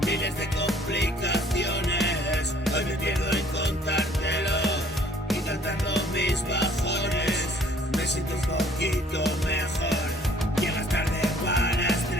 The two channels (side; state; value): both; normal; correlation 0.57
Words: Miles de complicaciones, hoy me pierdo en contártelo y cantando mis bajones. Me siento un poquito mejor. Llegas tarde para